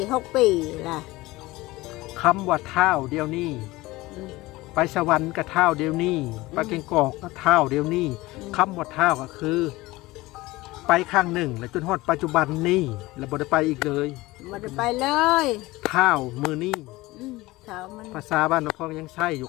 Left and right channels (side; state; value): right; quieter; 19.9 dB